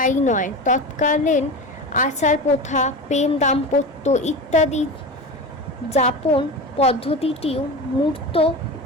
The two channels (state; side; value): normal; both; correlation 0.27